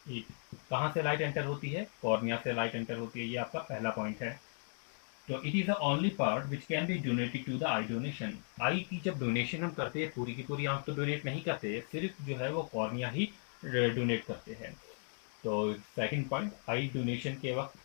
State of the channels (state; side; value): silent; right; 53 dB below the other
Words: it. कहाँ से लाइट एंटर होती है, कॉर्निया से लाइट एंटर होती है, ये आपका पहला पॉइंट है। तो it is the only part which can be donated to the eye donation. Eye की जब डोनेशन हम करते हैं, पूरी की पूरी आंख तो डोनेट नहीं करते, सिर्फ जो है वो कॉर्निया ही डोनेट करते हैं। तो सेकंड पॉइंट, आई डोनेशन के वक्त